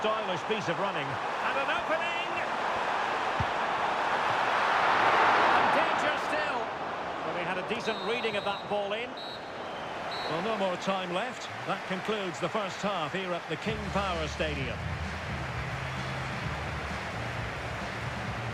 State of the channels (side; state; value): both; identical; correlation 1.00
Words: piece of running. And an opening! And danger still. Well, he had a decent reading of that ball in. Well, no more time left. That concludes the first half here at the King Power Stadium.